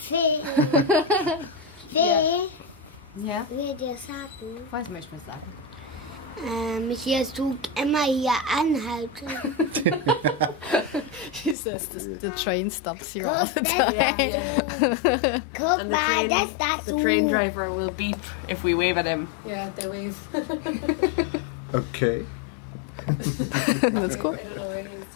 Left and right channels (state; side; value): drops out; right; at 11.6 s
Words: Ja? Will dir sagen? Was möchtest du sagen? Hier tut immer hier anhalten. She says the train stops here all the time. Guck and mal, the train driver will beep if we wave at him. Yeah, they wave. Okay. That's cool. I don't know where he is.